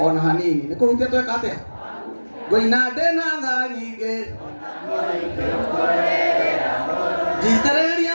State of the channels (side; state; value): both; inverted; correlation -1.00